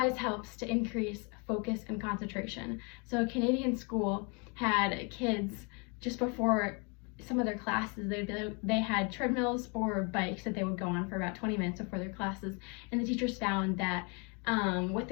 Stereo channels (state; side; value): quieter; right; 33.6 dB